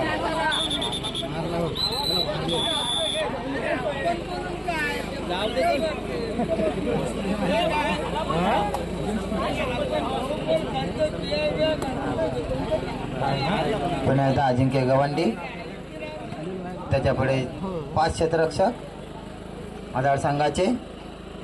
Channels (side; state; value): both; identical; correlation 1.00